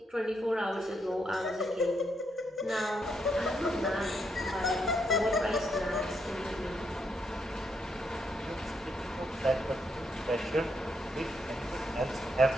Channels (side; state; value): both; normal; correlation 0.78